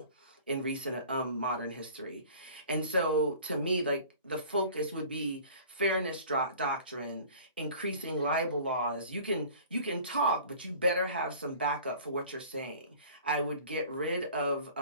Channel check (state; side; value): inverted; both; correlation -0.46